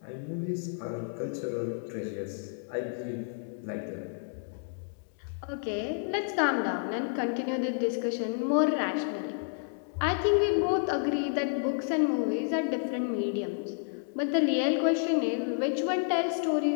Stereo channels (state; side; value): silent; right; digital silence